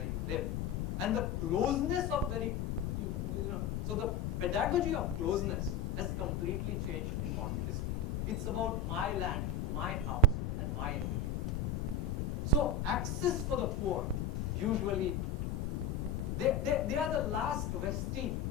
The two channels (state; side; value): noise; left; rumble, 1 dB below the sound